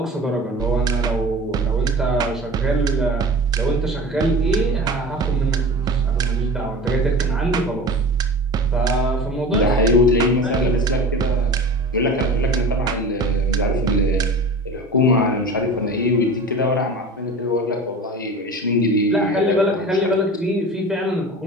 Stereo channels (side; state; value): both; normal; correlation 0.35